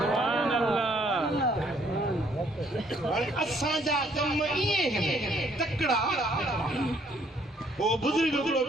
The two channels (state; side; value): normal; both; correlation 0.65